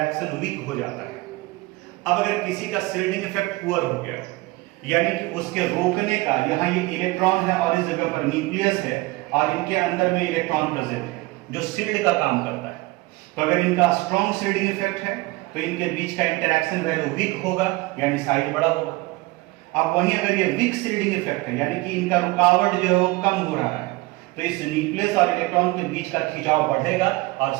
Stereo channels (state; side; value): quieter; left; 21.6 dB